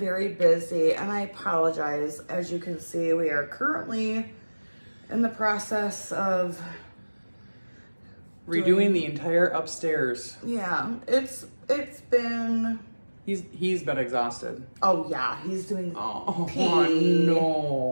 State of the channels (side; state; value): both; inverted; correlation -1.00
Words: busy and I apologize. As you can see, we are currently in the process of redoing the entire upstairs. Yeah, it's been... He's been exhausted. Oh yeah, he's doing... Oh, P.